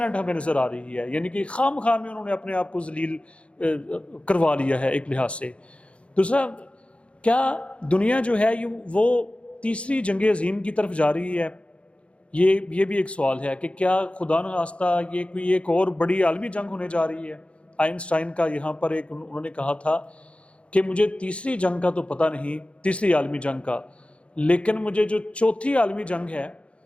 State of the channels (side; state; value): right; late; 0.061 ms